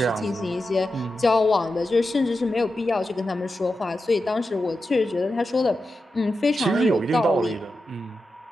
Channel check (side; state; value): both; normal; correlation 0.90